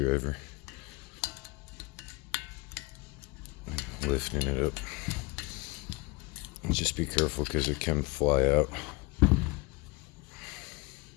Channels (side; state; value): right; quieter; 24.9 dB